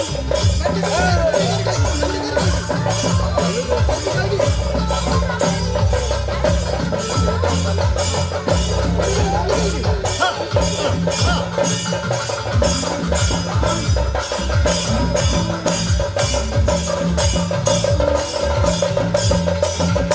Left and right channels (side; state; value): both; identical; correlation 1.00